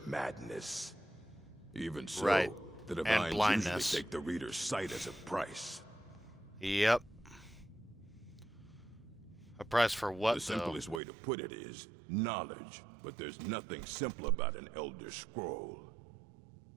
madness. Even so, Right. the And Divines blindness. usually take the reader's sight as a price. Yep. A price for what, The though? simplest way to put it is knowledge, but there's nothing simple about an Elder Scroll.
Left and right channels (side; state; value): left; drops out; at 11.0 s